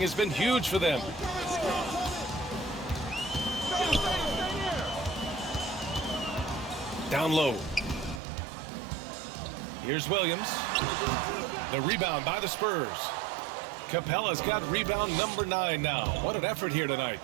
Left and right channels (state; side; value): drops out; left; at 8.2 s